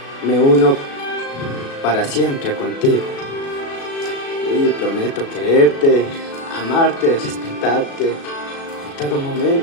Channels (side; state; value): right; late; 36 ms